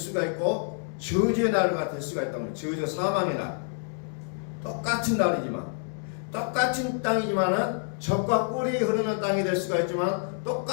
있고 저주의 날가 될 수가 있다는 거예요. 저주 사망의 날. 똑같은 날이지만 똑같은 땅이지만은 적과 꿀이 흐르는 땅이 될 수가 있지만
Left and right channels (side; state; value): right; silent; 60 dB below the other